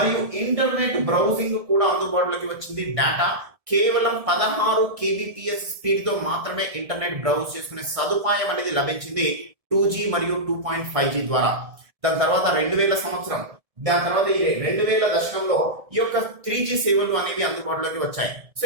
ఇంటర్నెట్ బ్రౌజింగ్ కూడా అందుబాటులోకి వచ్చింది. డేటా కేవలం 16 kbps స్పీడ్ తో మాత్రమే ఇంటర్నెట్ బ్రౌజ్ చేసుకునే సదుపాయం అనేది లభించింది 2G మరియు 2.5G ద్వారా. దాని తర్వాత 2000 సంవత్సరం, దాని తర్వాత ఈ 2000 దశకంలో ఈ యొక్క 3G సేవలు అనేవి అందుబాటులోకి వచ్చాయి. సో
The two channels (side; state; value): left; late; 1.7 ms